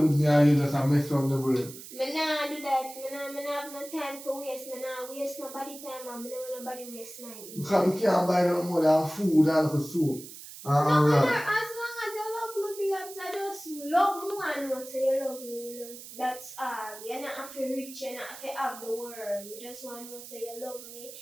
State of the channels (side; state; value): right; noise; hiss, 14 dB below the sound